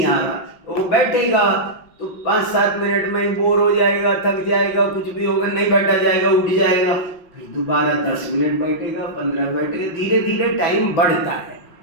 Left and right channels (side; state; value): right; late; 6.0 ms